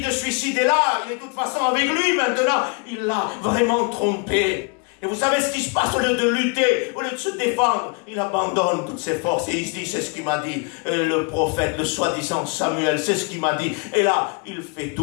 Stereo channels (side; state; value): right; quieter; 34.2 dB